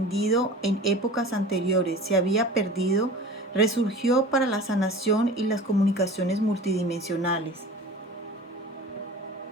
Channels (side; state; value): both; normal; correlation 0.38